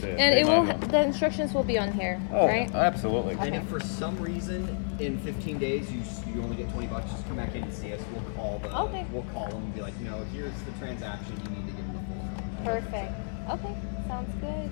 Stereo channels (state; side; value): silent; right; digital silence